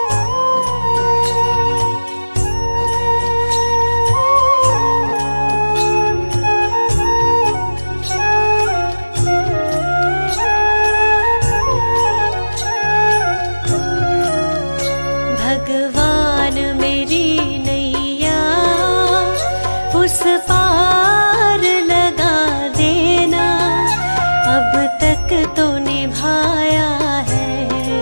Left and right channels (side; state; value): both; inverted; correlation -1.00